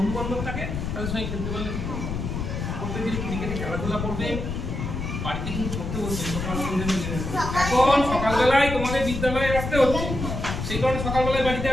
বান্ধব থাকে তাদের সঙ্গে খেলতে পারলে প্রত্যেকদিন একটু বিকেলে খেলাধুলা করবে। বাড়িতে কিন্তু পড়তে বসবে সকাল সন্ধ্যে। এখন সকালবেলায় তোমাদের বিদ্যালয়ে আসতে হচ্ছে, সেই কারণে সকালবেলায় বাড়িতে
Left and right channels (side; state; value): left; noise; rumble, 4 dB below the sound